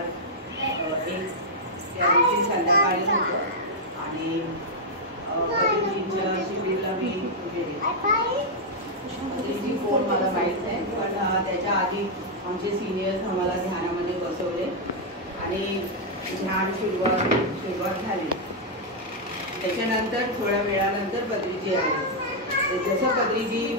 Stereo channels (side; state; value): both; normal; correlation -0.04